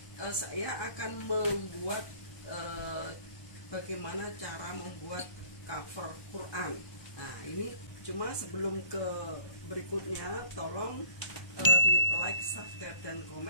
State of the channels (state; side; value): late; right; 1.3 ms